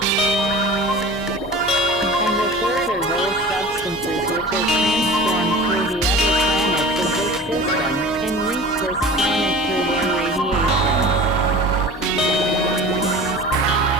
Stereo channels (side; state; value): both; normal; correlation 0.38